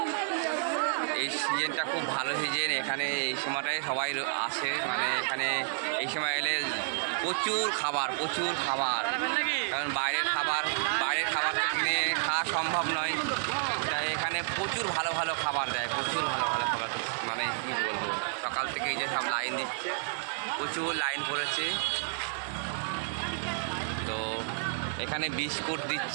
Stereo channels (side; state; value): left; silent; digital silence